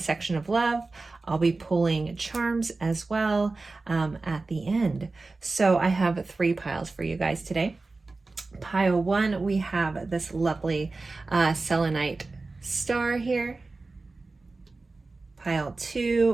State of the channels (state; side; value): quieter; left; 3.6 dB